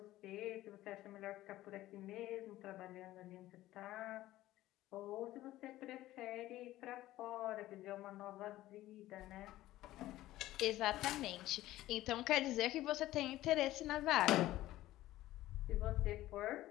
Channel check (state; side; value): quieter; right; 15.5 dB